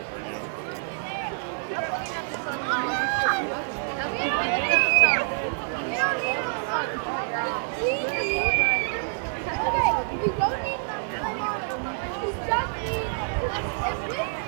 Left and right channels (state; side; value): silent; left; 58 dB below the other